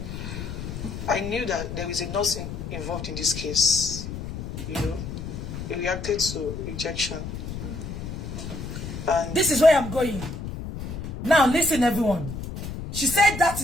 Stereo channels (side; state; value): left; noise; rumble, 7 dB below the sound